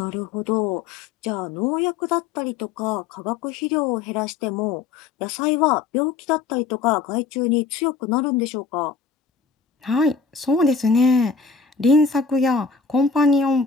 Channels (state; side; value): quieter; right; 5.1 dB